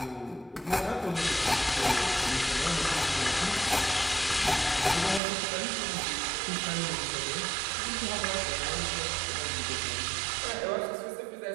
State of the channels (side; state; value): left; drops out; at 5.2 s